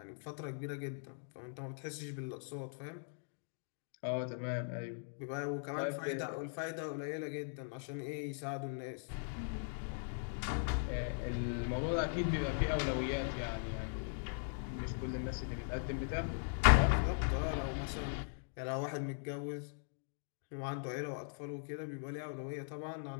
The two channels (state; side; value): silent; right; digital silence